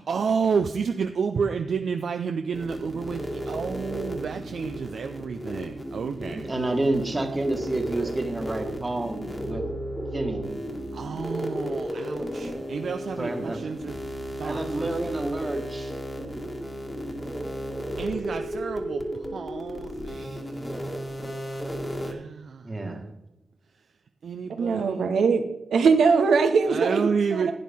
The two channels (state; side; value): quieter; left; 3.7 dB